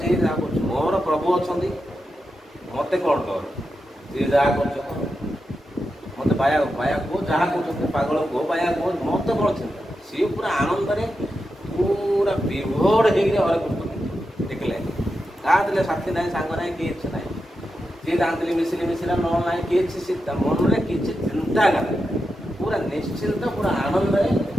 ଯାହା କରୁଛି, ମୋର ପ୍ରଭୁ ଅଛନ୍ତି, ମୋତେ କ'ଣ ଡର? ଯିଏ ଯାହା କରୁଛ ମୋତେ ବାୟା କୁହ, ଯାହା କରୁଛନ୍ତି ପାଗଳ କୁହ, ବାୟା କୁହ, ମୋତେ କ'ଣ ଚିନ୍ତା? ସିଏ ପୁରା ଆନନ୍ଦରେ ପୁରା ବିଭୋର ହେଇକିରି ହରେ କୃଷ୍ଣ ଦେଖିଲେ। କାହା ଥିଲେ ସାଥୀ ନାହିଁ, ସାଙ୍ଗ ନାହିଁ, କିଛି ନାହିଁ। ଯିଏ ଜାଣିଥିଲି ମିଶିଲା ନ ନାହିଁ କିଛି, ସେ ତା ମନରେ କିଛି ଚିନ୍ତା କରେ, ପୁରା ନିଶ୍ଚିନ୍ତ, ପୁରା ଆନନ୍ଦରେ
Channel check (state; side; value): normal; both; correlation 0.88